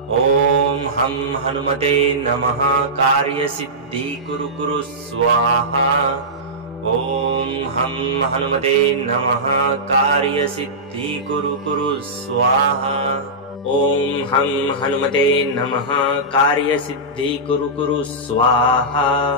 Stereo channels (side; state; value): both; normal; correlation -0.15